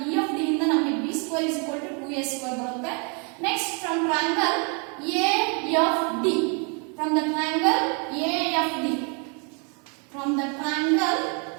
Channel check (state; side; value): quieter; left; 36.4 dB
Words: EFD ಇಂದ ನಮಗೆ B square is equal to 2A square ಬರುತ್ತೆ. Next, from triangle AFD. From the triangle AFD. From the triangle